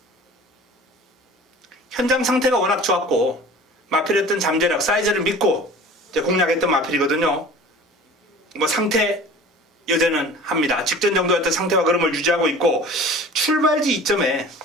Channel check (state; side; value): normal; both; correlation 0.43